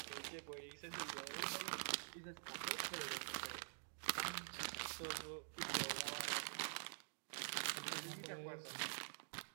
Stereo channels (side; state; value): left; silent; digital silence